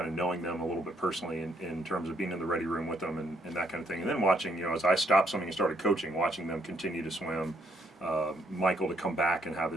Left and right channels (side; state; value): both; normal; correlation 0.72